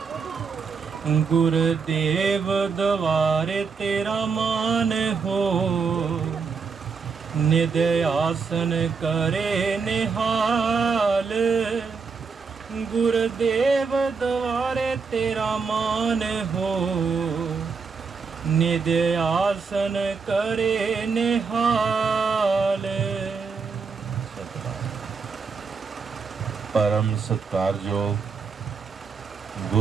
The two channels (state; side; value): quieter; left; 5.2 dB